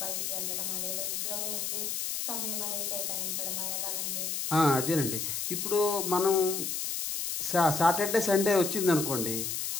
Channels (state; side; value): noise; left; hiss, 2 dB below the sound